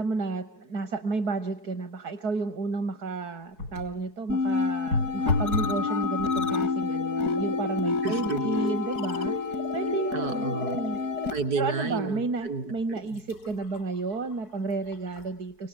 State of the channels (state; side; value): late; left; 4.6 ms